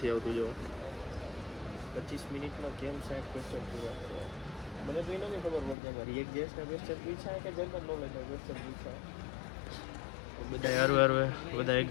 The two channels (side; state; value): right; drops out; at 5.8 s